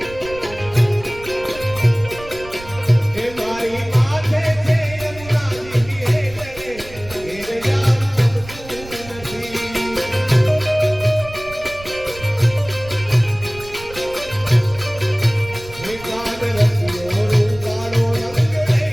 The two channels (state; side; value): noise; right; rumble, 17 dB below the sound